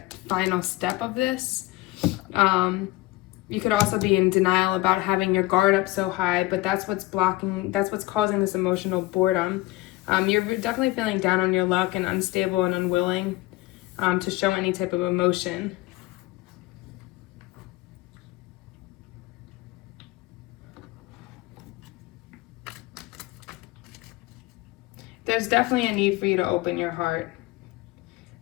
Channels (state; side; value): quieter; right; 19.0 dB